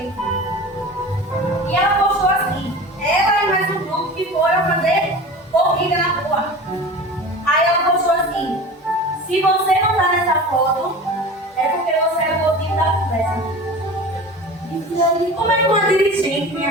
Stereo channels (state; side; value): normal; both; correlation 0.35